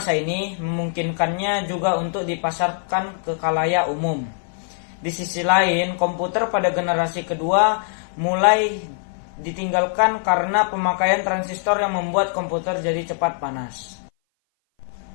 ini, memungkinkannya juga untuk dipasarkan ke khalayak umum. Di sisi lain, komputer pada generasi kedua mulai ditinggalkan karena pemakaian transistor yang membuat komputer jadi cepat panas.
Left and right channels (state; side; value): silent; right; 58 dB below the other